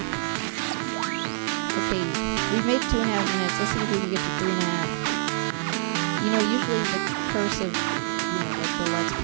Okay, we've made 2.5 minutes. Let's see if we can get to 3.5. You know, usually the curse of, you know, like the Let's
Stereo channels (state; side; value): silent; left; digital silence